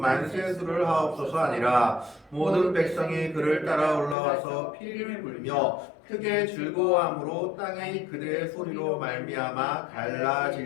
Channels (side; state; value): right; drops out; at 4.2 s